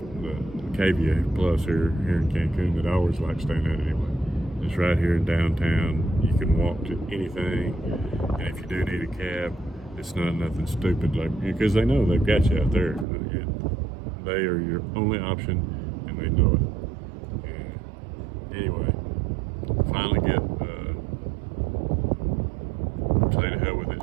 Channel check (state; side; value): drops out; left; at 13.1 s